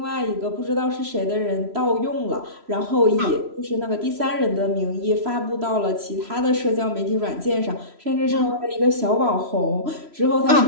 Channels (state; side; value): late; left; 3.0 ms